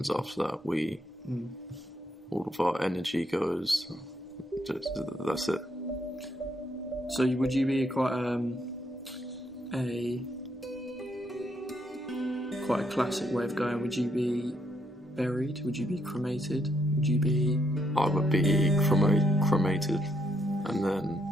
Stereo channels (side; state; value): both; normal; correlation 0.75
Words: after that. All of our energy goes. That's it. So would you be quite a classic way of going? Would you be buried? Would you be cremated? Would you be... I would be cremated and then